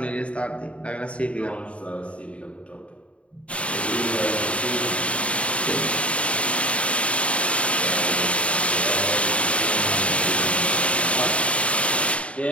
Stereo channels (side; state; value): right; late; 0.063 ms